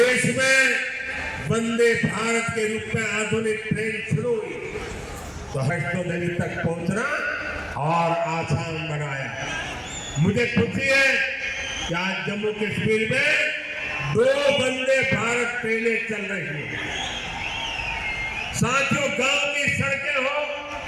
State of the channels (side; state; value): both; identical; correlation 1.00